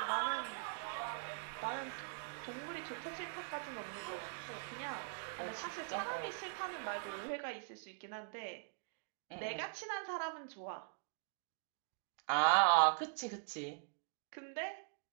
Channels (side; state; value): left; silent; digital silence